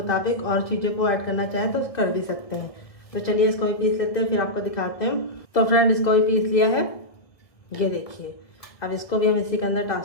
और चीज़ों को ऐड करना चाहें तो कर भी सकते हैं। तो चलिए इसको भी पीस लेते हैं, फिर आपको दिखाते हैं। तो फ्रेंड इसको भी पीस लिया है, ये देखिए। अब इसको भी हम इसी के अंदर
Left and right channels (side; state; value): right; late; 1.8 ms